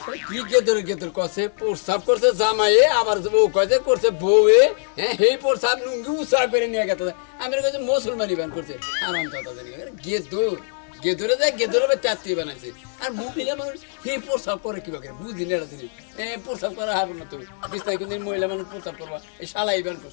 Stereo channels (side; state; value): right; silent; digital silence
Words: কি গেদর কছে প্রস্তাব করছে জামাইয়ে আবার বউ কছে করছে বউয়ে হ্যাঁ সেই প্রস্তাব লুঙ্গি উৎসাহ করে নিয়ে গেছে আমি কইছে মুসলমানি বান করছে আরাম কথা জানি গেদরে যায় গেদরে চাত্তি বানাইছে আর মহিলা মানুষ সেই প্রস্তাব করে কিভাবে বুঝি না দিন প্রস্তাব করা হবে না তো বিস্তারিত মহিলা মানুষ প্রস্তাব করবা এই শালাই বান